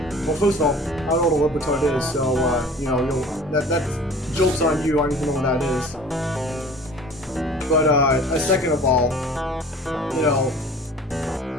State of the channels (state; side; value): normal; both; correlation 0.45